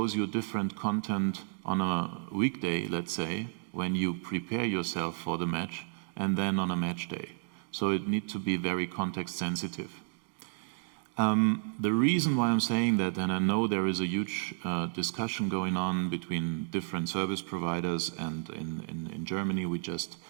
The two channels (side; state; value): left; silent; digital silence